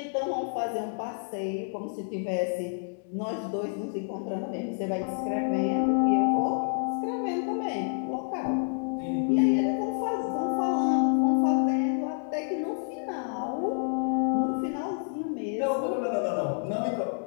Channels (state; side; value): silent; right; digital silence